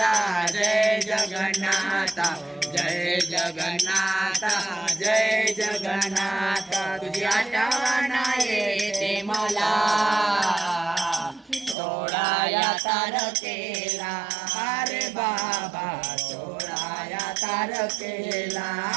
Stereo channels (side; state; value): left; drops out; at 11.8 s